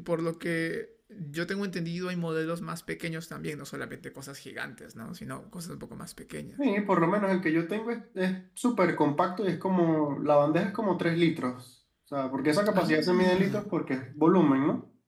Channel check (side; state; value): both; identical; correlation 1.00